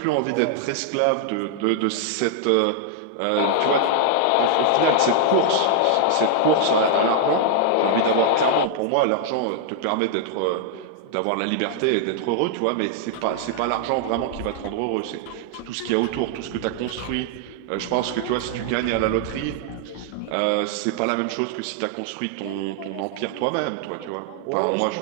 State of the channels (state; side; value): different; both; correlation -0.01